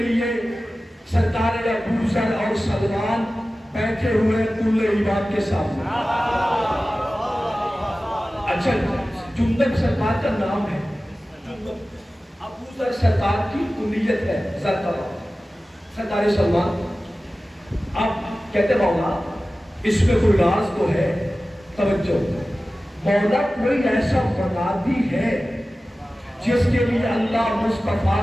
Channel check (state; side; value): normal; both; correlation 0.96